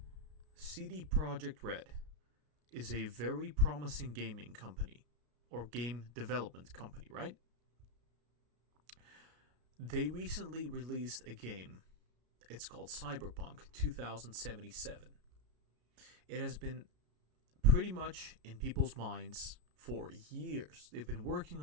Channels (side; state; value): left; late; 33 ms